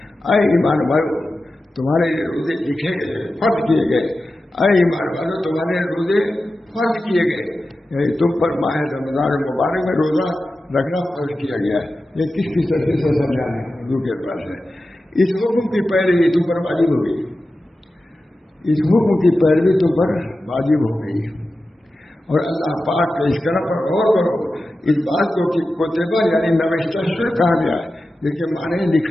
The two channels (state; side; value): normal; both; correlation 0.93